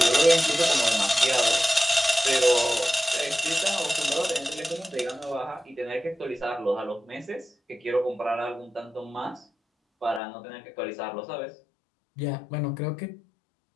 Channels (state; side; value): drops out; right; at 10.2 s